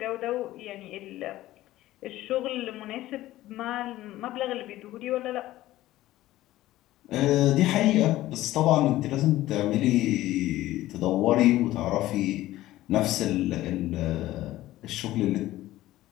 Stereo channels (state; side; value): quieter; right; 15.7 dB